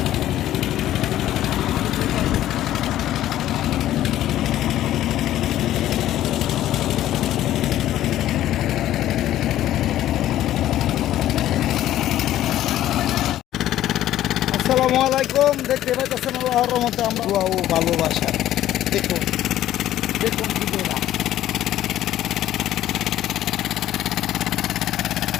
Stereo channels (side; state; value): right; quieter; 13.1 dB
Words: আসসালামু আলাইকুম। দেখতে পাইতেছেন আল্লাহর রহমতে আমরা দোয়া ও ভালোবাসা। দেখুন দেখুন ভিডিওটা।